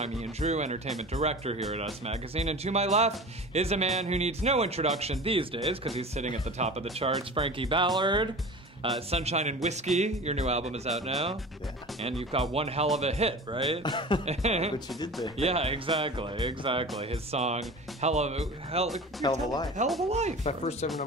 Ian Drew, entertainment director here at Us Magazine. And to my left is a man who needs no introduction these days because he's sitting at the top of the charts, Frankie Ballard. Sunshine and Whiskey, your new album is out now. Yeah. And you've got one hell of a hit, right? But you did there. Yeah, exactly. His song, Hell of a Life. Hell of a Life. My first ever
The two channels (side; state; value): both; normal; correlation 0.36